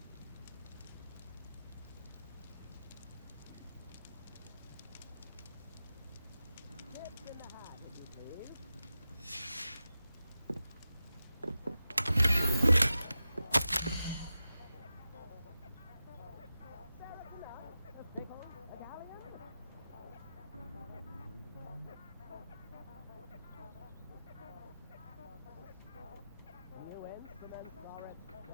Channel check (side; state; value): both; inverted; correlation -0.93